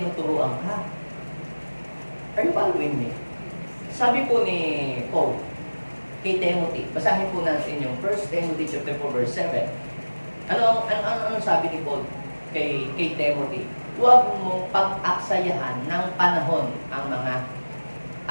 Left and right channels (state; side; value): inverted; both; correlation -1.00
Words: ka. Are you following me? Sabi po ni Paul kay Timothy, basahin po natin yung 1 Timothy chapter 4 verse 7. Ano sabi ni Paul kay Timothy? Huwag mong pag-aksayahan ng panahon ang mga